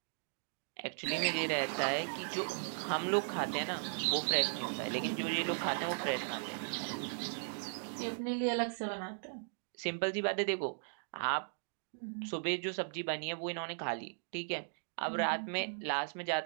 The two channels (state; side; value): silent; left; digital silence